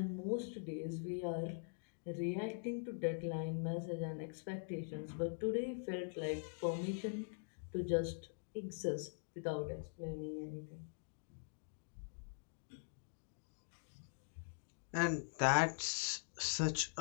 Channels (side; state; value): right; silent; digital silence